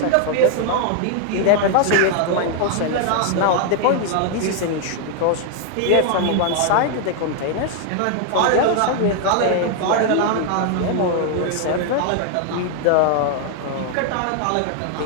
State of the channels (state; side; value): different; both; correlation 0.00